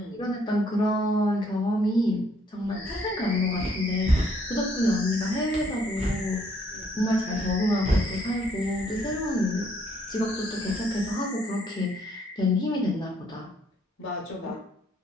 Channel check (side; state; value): both; normal; correlation 0.67